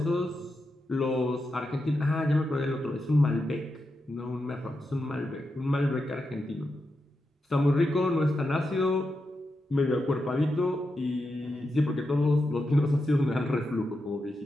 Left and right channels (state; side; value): normal; both; correlation 0.87